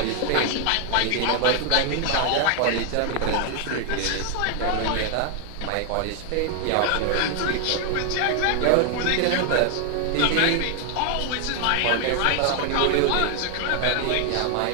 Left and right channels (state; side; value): different; both; correlation 0.00